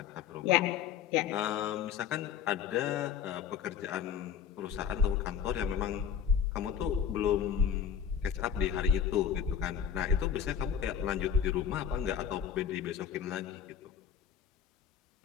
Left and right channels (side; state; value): right; quieter; 8.0 dB